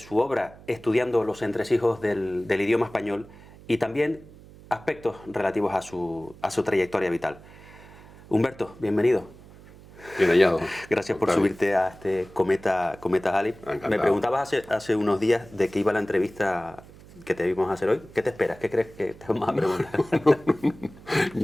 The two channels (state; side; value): noise; right; hum, 21 dB below the sound